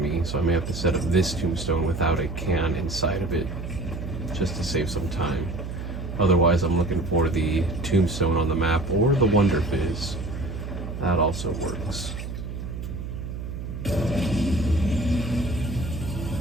so I may have to set up this Tombstone without a can inside of it, just to save some time. Otherwise, I'm looking for the Tombstone on the map, or the Wonder Fizz. That also works.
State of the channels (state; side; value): noise; right; hum, 7 dB below the sound